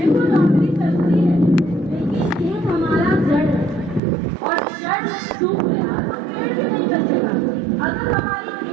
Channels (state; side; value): drops out; left; at 4.0 s